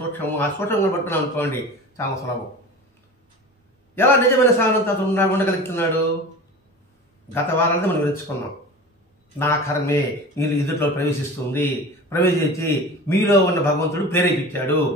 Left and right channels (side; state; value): both; normal; correlation 0.35